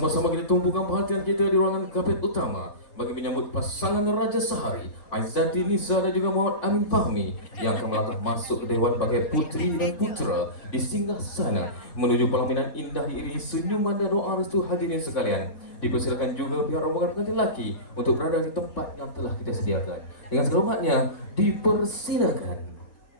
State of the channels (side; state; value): right; late; 3.5 ms